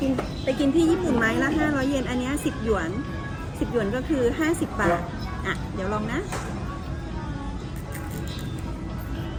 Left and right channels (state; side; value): identical; both; correlation 1.00